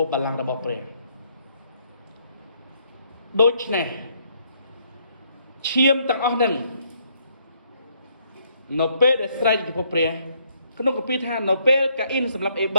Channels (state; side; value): inverted; both; correlation -0.70